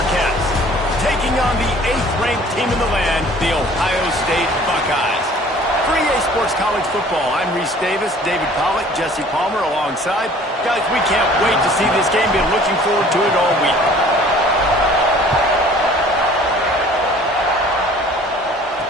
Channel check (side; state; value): both; normal; correlation 0.51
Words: taking on the 8th-ranked team in the land, the Ohio State Buckeyes. For EA Sports College Football, I'm Reese Davis, David Pollack, Jesse Palmer alongside. Guys, we can't wait to see this game. Been looking forward to it all week.